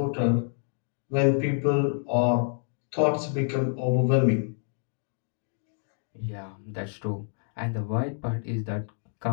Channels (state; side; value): silent; right; digital silence